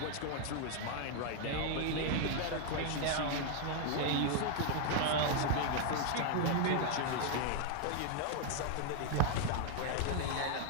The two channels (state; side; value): different; both; correlation 0.00